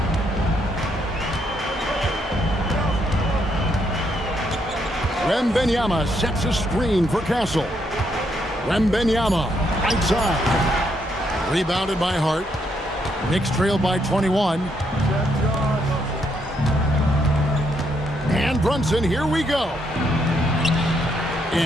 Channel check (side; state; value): both; normal; correlation 0.75